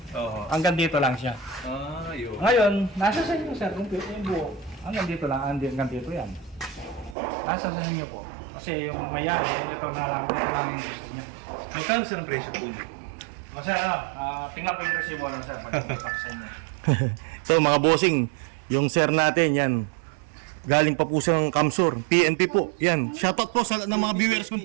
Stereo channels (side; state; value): left; drops out; at 7.2 s